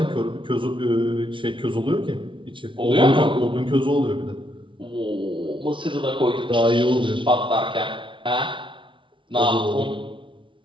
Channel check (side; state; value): left; late; 0.24 ms